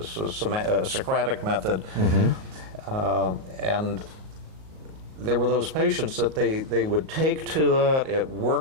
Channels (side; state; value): left; late; 38 ms